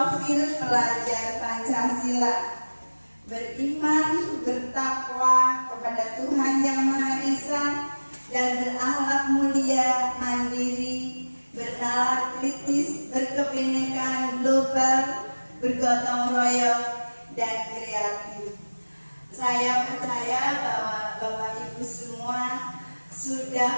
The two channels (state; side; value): inverted; both; correlation -1.00